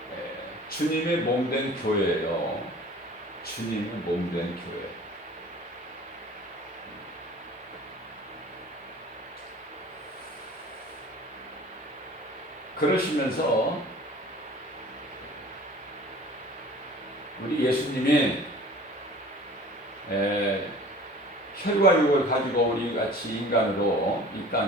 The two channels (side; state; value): both; normal; correlation 0.45